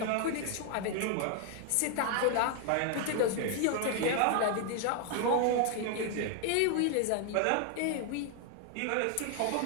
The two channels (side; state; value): both; different; correlation 0.00